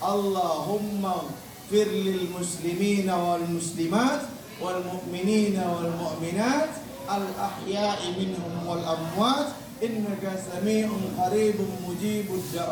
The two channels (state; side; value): identical; both; correlation 1.00